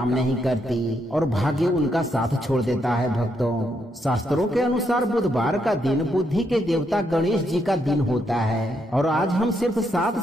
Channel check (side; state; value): both; normal; correlation 0.78